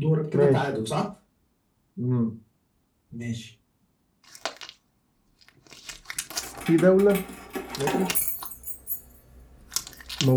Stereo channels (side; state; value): both; identical; correlation 1.00